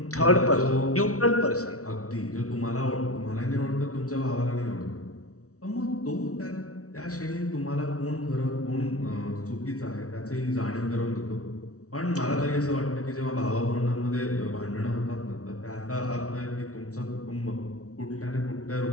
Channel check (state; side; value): late; right; 0.65 ms